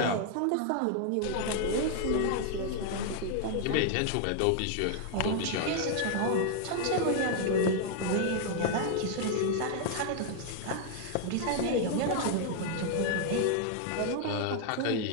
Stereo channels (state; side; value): different; both; correlation 0.00